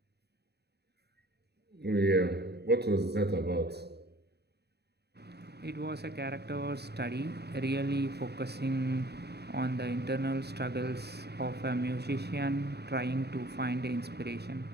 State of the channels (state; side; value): late; left; 0.48 ms